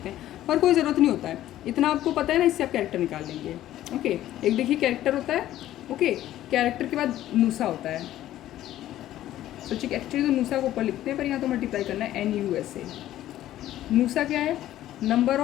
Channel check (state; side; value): quieter; right; 13.4 dB